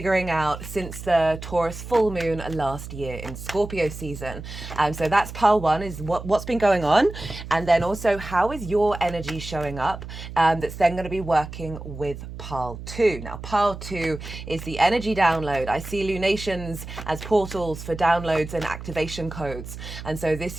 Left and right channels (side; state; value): right; noise; hum, 11 dB below the sound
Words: out since the Taurus full moon last year in Scorpio season. So that's pile one, is what's been going on. And then also, how is your energy showing up? That's then going to be working with pile two. Now, pile two is the energy download. I see lunations as portals for downloads and activation codes. And so this